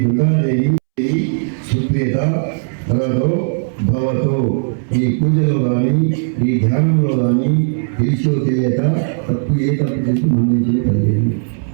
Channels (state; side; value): silent; left; 69 dB below the other